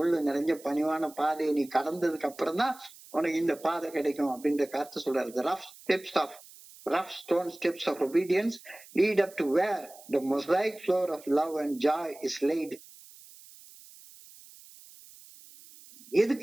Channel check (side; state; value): right; noise; hiss, 21 dB below the sound